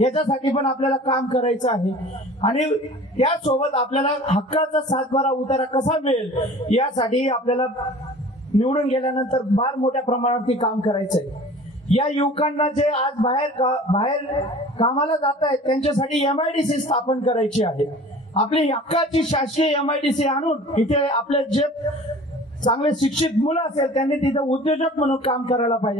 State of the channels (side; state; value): both; normal; correlation 0.44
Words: याच्यासाठी पण आपल्याला काम करायचं आहे. आणि त्यासोबत आपल्याला हक्काचा 7/12 उतारा कसा मिळेल यासाठी आपल्याला निवडून गेल्यानंतर फार मोठ्या प्रमाणावरती काम करायचंय. या युवकांना जे आज बाहेर कामाला जात आहेत त्यांच्यासाठी MIDC स्थापन करायची आहे. आपली हक्काची शासकीय MIDC आणून इथे आपले जे चांगले शिक्षित मुलं असेल त्यांनी तिथे उद्योजक म्हणून काम करायला